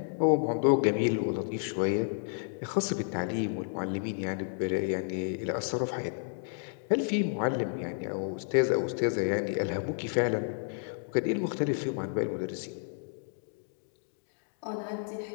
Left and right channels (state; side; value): silent; right; digital silence